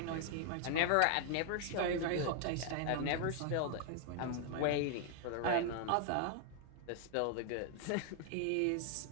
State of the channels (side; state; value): both; different; correlation 0.00